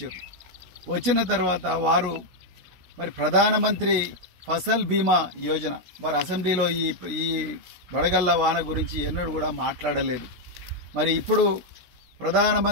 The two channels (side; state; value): left; late; 16 ms